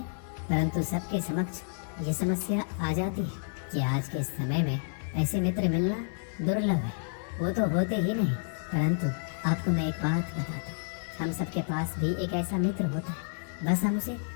परंतु सबके समक्ष ये समस्या आ जाती है कि आज के समय में ऐसे मित्र मिलना दुर्लभ है। वो तो होते ही नहीं। परंतु आपको मैं एक बात बता दूं, हम सबके पास भी एक ऐसा मित्र होता है, बस हम उसे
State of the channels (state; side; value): silent; right; digital silence